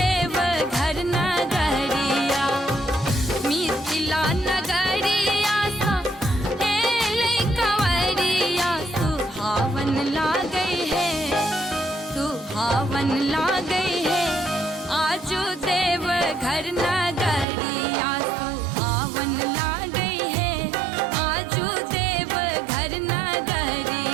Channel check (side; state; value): left; drops out; at 17.4 s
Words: घर नगरिया मिथिला नगरिया सा हेले कंवरिया सुहावन लागे है सुहावन लागे है आजू देव घर नगरिया सुहावन लागे है आजू देव घर